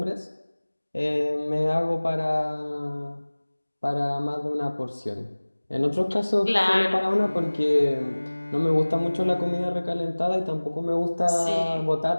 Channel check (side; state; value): both; inverted; correlation -1.00